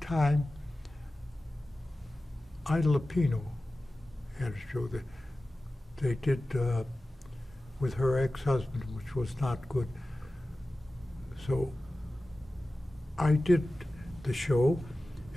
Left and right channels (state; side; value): normal; both; correlation 0.96